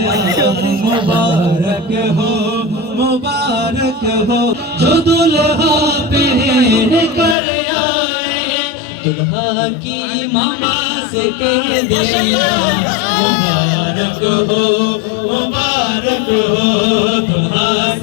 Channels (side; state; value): right; drops out; at 7.4 s